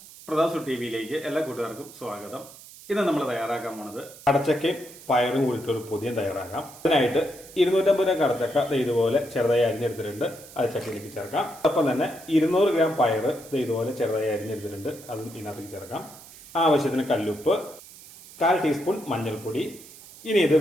പ്രതാസു ടി വിയിലേക്ക് എല്ലാ കൂട്ടുകാർക്കും സ്വാഗതം. ഇന്ന് നമ്മൾ തയ്യാറാക്കാൻ പോണത് കടച്ചക്കയും പയറും കൂടിയിട്ടൊരു പുതിയ തയ്യാറാക്കാം. അതിനായിട്ട് 250 ഗ്രാം കടച്ചക്ക ഇതുപോലെ ചെറുതായി അരിഞ്ഞെടുത്തിട്ടുണ്ട്. അത് ചക്കയിലേക്ക് ചേർക്കാം. ഒപ്പം തന്നെ 200 ഗ്രാം പയർ ഇതുപോലെ ചെറുതായി അരിഞ്ഞെടുത്തിട്ടുണ്ട്. അത് ഇതിനകത്തേക്ക് ചേർക്കാം. ആവശ്യത്തിന് കല്ലുപ്പ്, 1/4 ടീസ്പൂൺ മഞ്ഞൾപ്പൊടി. ഇനി ഇത്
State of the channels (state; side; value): noise; right; hiss, 19 dB below the sound